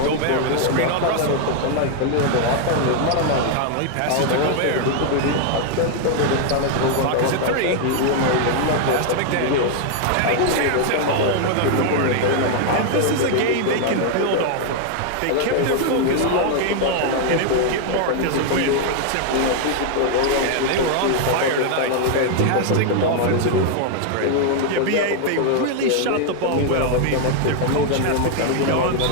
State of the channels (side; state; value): both; different; correlation 0.00